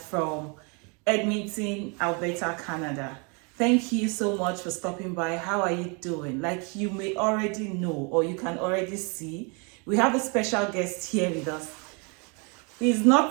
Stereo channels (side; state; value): left; quieter; 33.3 dB